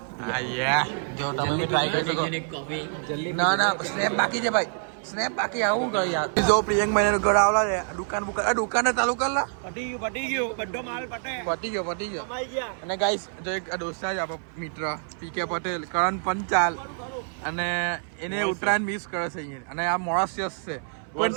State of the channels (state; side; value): silent; left; 59 dB below the other